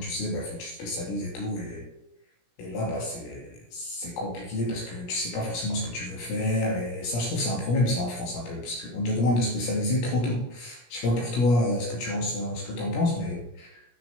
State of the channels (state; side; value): late; right; 17 ms